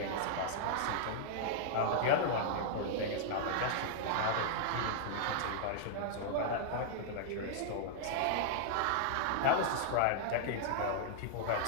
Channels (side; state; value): both; different; correlation -0.01